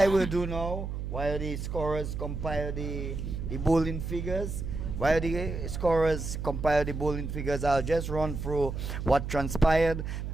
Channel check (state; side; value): noise; right; hum, 5 dB below the sound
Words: will do now, while the scorers compile the bowling figures, I'll just run through what transpired.